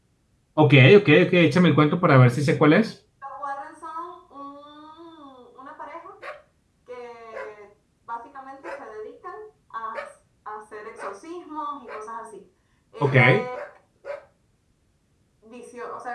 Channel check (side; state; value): both; identical; correlation 1.00